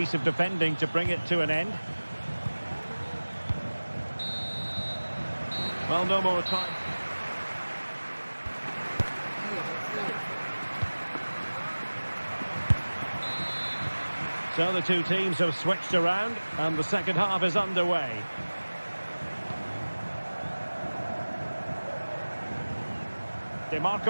of defending to bring it to an end. Well, no more time. So the two teams have switched around and the second half is underway. De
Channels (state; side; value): inverted; both; correlation -1.00